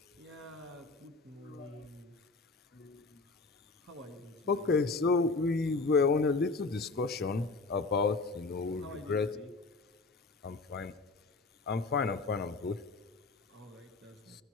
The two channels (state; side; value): quieter; right; 3.7 dB